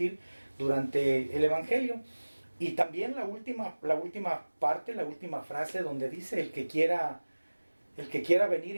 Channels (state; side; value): inverted; both; correlation -1.00